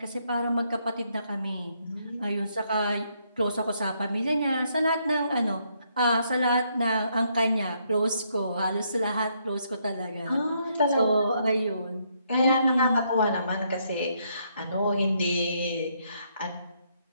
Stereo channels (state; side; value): inverted; both; correlation -0.74